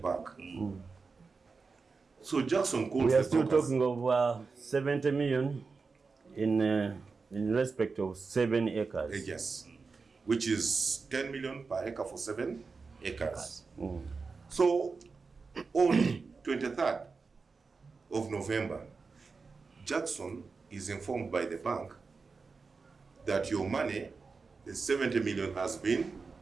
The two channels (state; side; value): quieter; left; 4.6 dB